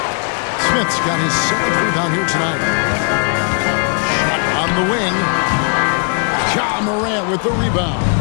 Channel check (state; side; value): quieter; right; 39.8 dB